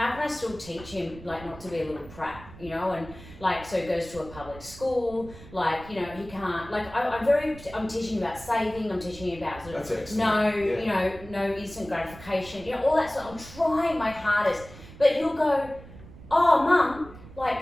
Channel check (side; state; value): right; noise; rumble, 17 dB below the sound